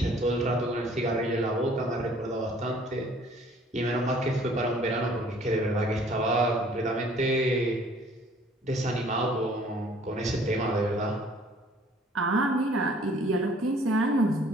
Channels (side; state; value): both; normal; correlation 0.56